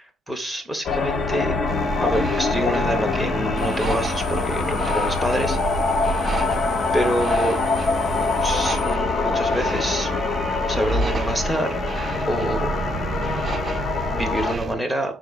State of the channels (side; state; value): both; normal; correlation 0.72